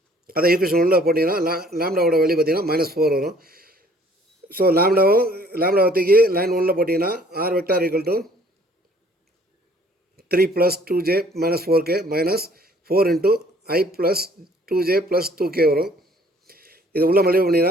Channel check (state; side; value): normal; both; correlation 0.58